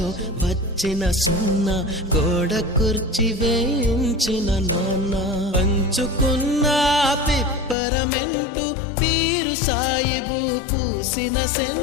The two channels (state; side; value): drops out; right; at 7.8 s